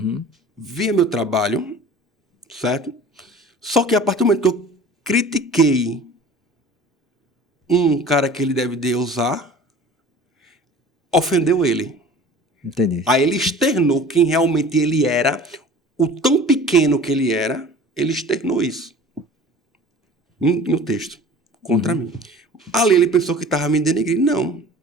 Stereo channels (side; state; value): both; normal; correlation 0.43